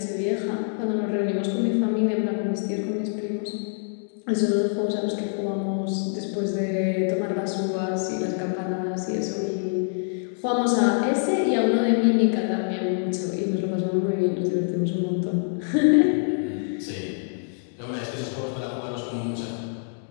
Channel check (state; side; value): silent; right; digital silence